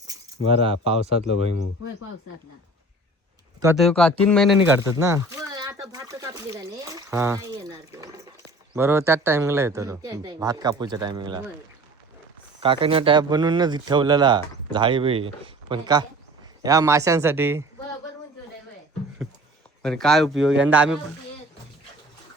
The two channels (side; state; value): both; normal; correlation 0.45